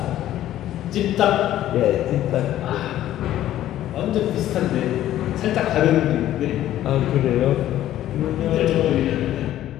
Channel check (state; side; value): quieter; right; 12.9 dB